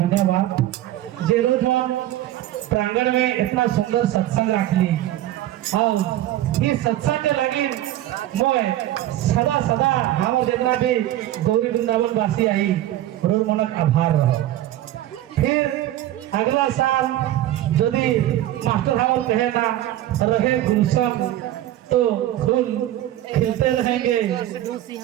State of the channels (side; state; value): left; quieter; 13.8 dB